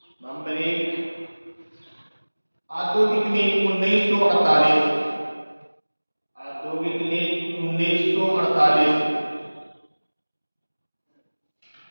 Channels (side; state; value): both; inverted; correlation -1.00